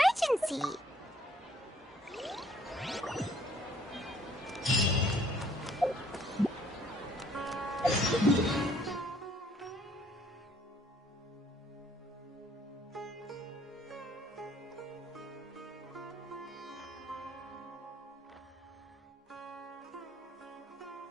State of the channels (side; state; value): both; normal; correlation 0.62